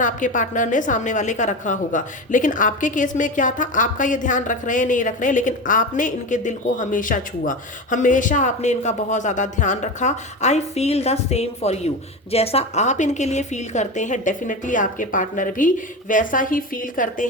आपके पार्टनर ने सामने वाले का रखा होगा। लेकिन आपके केस में क्या था, आपका ये ध्यान रख रहे हैं नहीं रख रहे हैं, लेकिन आपने इनके दिल को हमेशा छुआ, हमेशा आपने इनका बहुत ज़्यादा ध्यान रखा। I feel the same for you. जैसा आप इनके लिए फील करते हैं, डेफिनेटली आपके पार्टनर भी वैसा ही फील करते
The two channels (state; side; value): normal; both; correlation 0.24